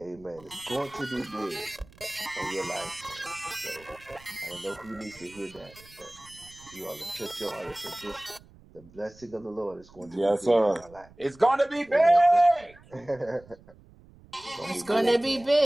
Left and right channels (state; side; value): noise; right; rumble, 24 dB below the sound